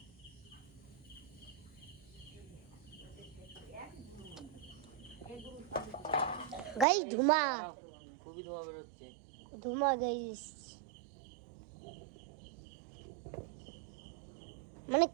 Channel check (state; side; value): drops out; left; at 6.9 s